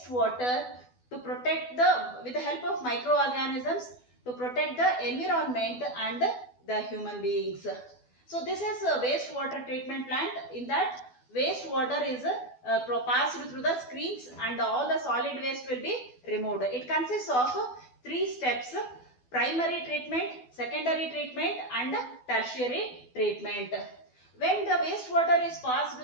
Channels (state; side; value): late; right; 12 ms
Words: water to protect with the help of microorganisms to protect the environment and the human beings. So this is a wastewater treatment plant. In that, wastewater is passed through the screens and all the solid waste will be removed. It consists of three steps: primary treatment, secondary treatment and tertiary treatment. When the wastewater is passed